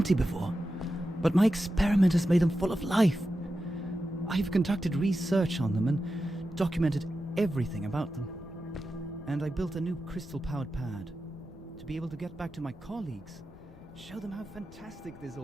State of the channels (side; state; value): both; normal; correlation 0.91